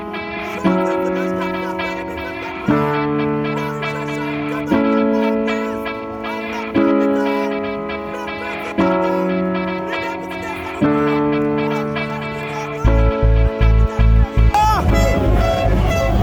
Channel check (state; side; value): identical; both; correlation 1.00